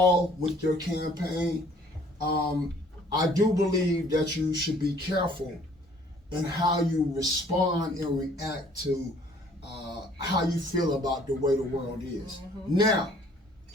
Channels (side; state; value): both; normal; correlation 0.58